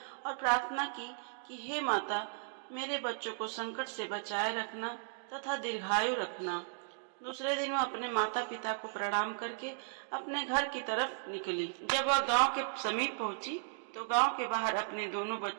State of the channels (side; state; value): left; silent; digital silence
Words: और प्रार्थना की कि हे माता, मेरे बच्चों को संकट से बचाए रखना तथा दीर्घायु रखना। दूसरे दिन वह अपने माता पिता को प्रणाम करके अपने घर की तरफ निकली। जब वह गांव के समीप पहुंची तो गांव के बाहर अपने दोनों